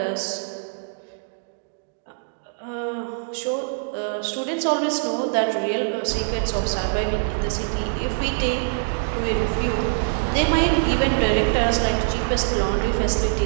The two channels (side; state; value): left; silent; digital silence